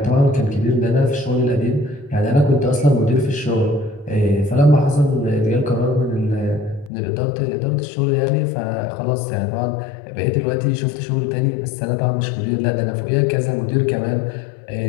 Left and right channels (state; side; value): drops out; right; at 6.9 s